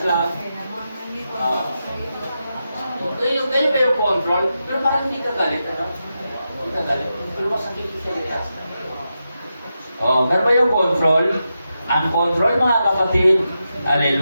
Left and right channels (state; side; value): inverted; both; correlation -0.88